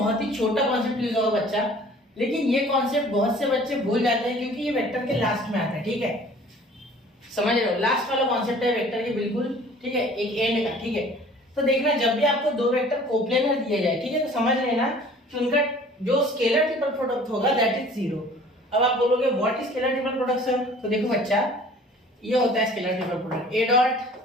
ही छोटा कॉन्सेप्ट यूज होगा बच्चा, लेकिन ये कॉन्सेप्ट बहुत से बच्चे भूल जाते हैं क्योंकि ये वेक्टर के लास्ट में आता है, ठीक है। समझ रहे हो, लास्ट वाला कॉन्सेप्ट है वेक्टर के, बिल्कुल ठीक है, एक एंड का, ठीक है। तो देखना, जब भी आपको दो वेक्टर कोप्लेनर दिए जाए, ठीक है, तो समझ लेना कि उनका जो स्केलर ट्रिपल प्रोडक्ट होगा दैट इज जीरो। अब आप बोलोगे what is scalar triple product sir? तो देखो बच्चा, ये होता है scalar triple product, A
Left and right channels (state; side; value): normal; both; correlation 0.50